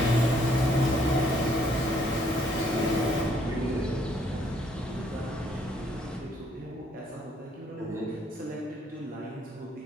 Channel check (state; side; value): normal; both; correlation 0.67